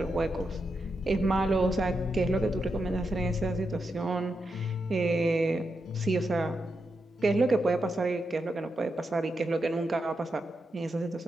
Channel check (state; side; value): normal; both; correlation 0.86